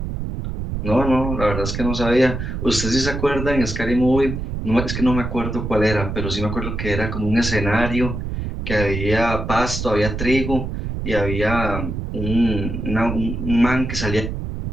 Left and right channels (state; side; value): noise; right; rumble, 4 dB below the sound